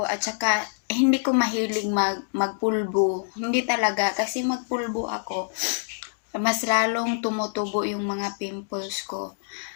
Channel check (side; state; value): right; silent; digital silence